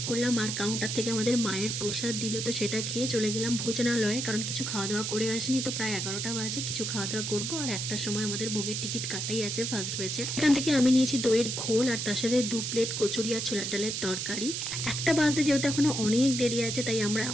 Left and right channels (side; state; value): right; noise; hiss, 2 dB below the sound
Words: করলাম। আর কাউন্টার থেকে আমাদের মায়ের প্রসাদ দিল, তো সেটা খেয়ে চলে গেলাম ভোজনালয়ে, কারণ কিছু খাওয়া দাওয়া করে আসিনি। তো প্রায় 11টা বাজে, কিছু খাওয়া দাওয়া করবো। আর একটার সময় আমাদের ভোগের টিকিট কাটাই আছে ফার্স্ট ব্যাচে। এখান থেকে আমি নিয়েছি দইয়ের ঘোল, আর তার সাথে 2 প্লেট কচুরি আর ছোলার ডালের তরকারি। একটা বাজতে যেহেতু এখনো অনেক দেরি আছে, তাই আমরা